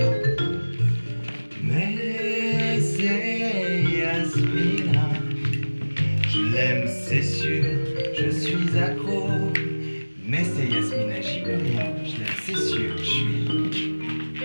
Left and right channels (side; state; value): both; inverted; correlation -1.00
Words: Mais c'est Yasmina, je l'aime, c'est sûr, je suis accro. Mais c'est Yasmina, j'y peux rien, je l'aime, c'est sûr, je suis